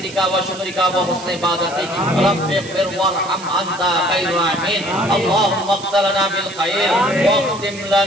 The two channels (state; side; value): noise; right; hiss, 15 dB below the sound